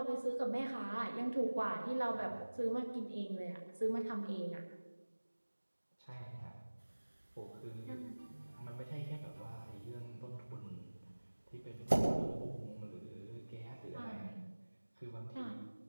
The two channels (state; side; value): inverted; both; correlation -1.00